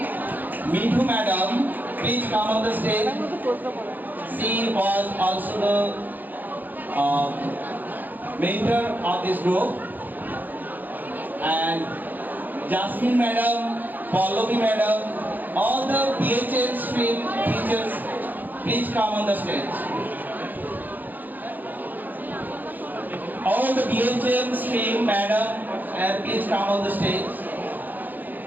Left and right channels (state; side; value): late; left; 0.085 ms